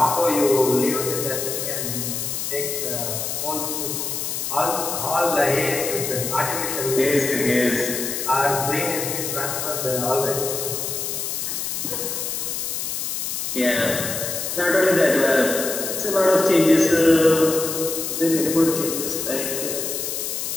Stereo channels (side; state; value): left; noise; hiss, 3 dB below the sound